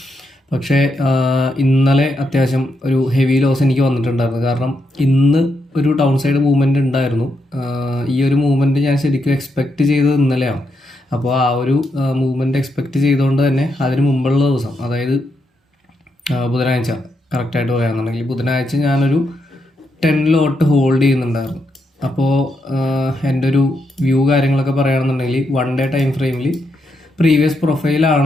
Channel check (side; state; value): both; normal; correlation 0.81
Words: പക്ഷേ ഇന്നലെ അത്യാവശ്യം ഒരു ഹെവി ലോസ് എനിക്ക് വന്നിട്ടുണ്ടായിരുന്നു. കാരണം ഇന്ന് ഒരു ഡൗൺ സൈഡ് മൂവ്മെൻറ്റ് ഉണ്ടായിരുന്നു. ഈ ഒരു മൂവ്മെൻറ്റ് ഞാൻ ശരിക്കും എക്സ്പെക്റ്റ് ചെയ്തത് ഇന്നലെയാണ്. അപ്പോൾ ആ ഒരു മൂവ്മെൻറ്റ് എക്സ്പെക്റ്റ് ചെയ്തുകൊണ്ട് തന്നെ അതിന് മുമ്പുള്ള ദിവസം, അതായത് ബുധനാഴ്ച കറക്റ്റായിട്ട് പറയുകയാണെന്നുണ്ടെങ്കിൽ ബുധനാഴ്ച ഞാനൊരു 10 ലോട്ട് ഹോൾഡ് ചെയ്യുന്നുണ്ടായിരുന്നു. അപ്പോൾ എൻ്റെ ഒരു വ്യൂ കാര്യങ്ങളൊക്കെ പറയുകയാണെന്നുണ്ടെങ്കിൽ 1 ഡേ ടൈം ഫ്രെയിമിൽ പ്രീവിയസ്